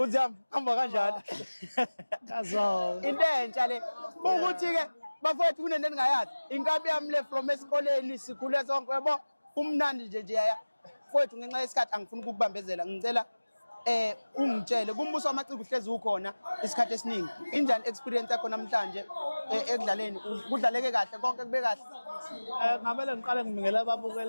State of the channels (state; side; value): inverted; both; correlation -1.00